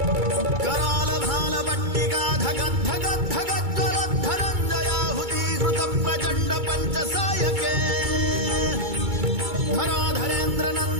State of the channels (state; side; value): late; left; 2.3 ms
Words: करालभालपट्टिकाधगद्धगद्धगज्ज्वलद्धनञ्जयाहुतीकृत प्रचण्ड पञ्चसायके